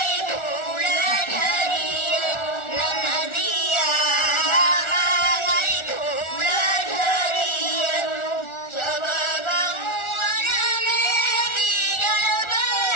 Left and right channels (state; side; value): late; right; 1.4 ms